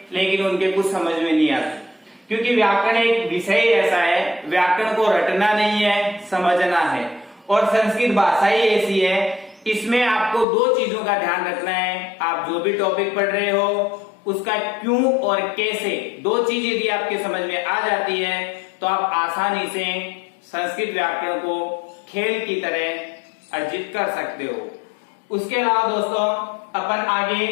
लेकिन उनके कुछ समझ में नहीं आता, क्योंकि व्याकरण एक विषय ऐसा है, व्याकरण को रटना नहीं है, समझना है। और संस्कृत भाषा ही ऐसी है, इसमें आपको 2 चीजों का ध्यान रखना है। आप जो भी टॉपिक पढ़ रहे हो उसका क्यों और कैसे, 2 चीज यदि आपके समझ में आ जाती है तो आप आसानी से संस्कृत व्याकरण को खेल की तरह अर्जित कर सकते हो। उसके अलावा दोस्तों अपन आगे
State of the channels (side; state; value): right; drops out; at 10.5 s